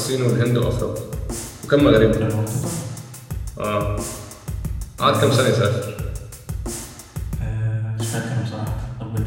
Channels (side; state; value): both; identical; correlation 1.00